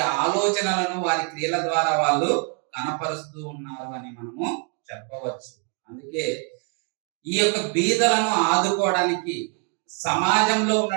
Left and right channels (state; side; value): quieter; left; 39.8 dB